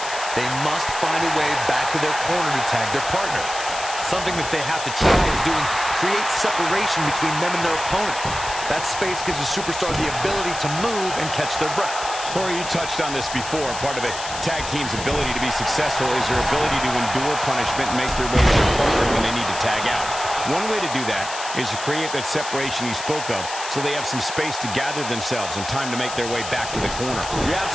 they must find a way back to their corner to tag their partner. Something that they have to try is doing create separation between them and their opponent. That space gives a superstar the ability to move and catch their breath. Corey, you touched on this before. Part of a tag team's ability to be successful is their ability to endure punishment and make their way to their partner when they need to tag out. One way to do that is to create that separation you spoke of so they have some space to gather themselves and time to make their way back to the corner. You're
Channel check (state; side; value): noise; left; hiss, 9 dB below the sound